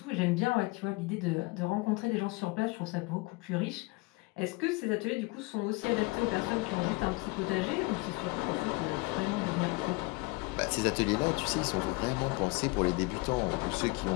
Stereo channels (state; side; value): quieter; right; 24.6 dB